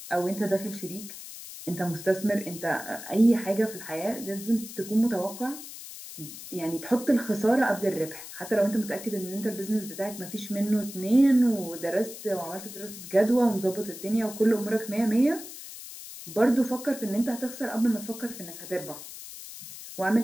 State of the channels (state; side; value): noise; left; hiss, 13 dB below the sound